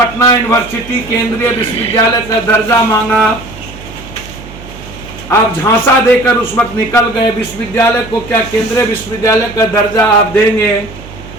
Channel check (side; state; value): right; noise; hum, 16 dB below the sound